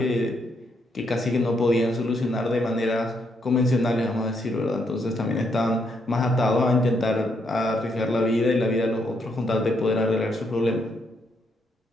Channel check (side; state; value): both; normal; correlation 0.76